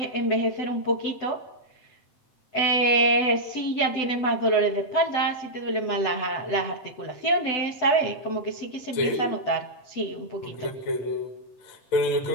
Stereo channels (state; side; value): late; right; 7.9 ms